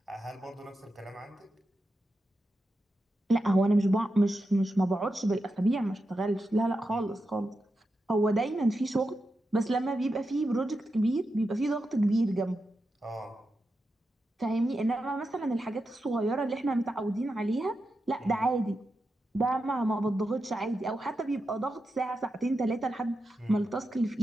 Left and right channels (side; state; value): both; normal; correlation 0.88